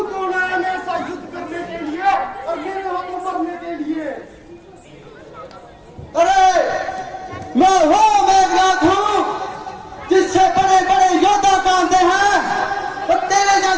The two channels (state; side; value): identical; both; correlation 1.00